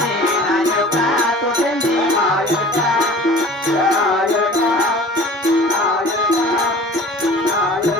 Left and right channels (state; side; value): normal; both; correlation 0.43